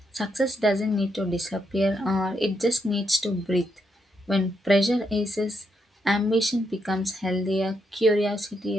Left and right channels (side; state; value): both; normal; correlation 0.79